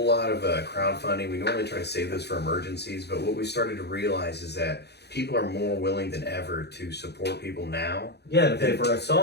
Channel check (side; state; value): right; late; 0.48 ms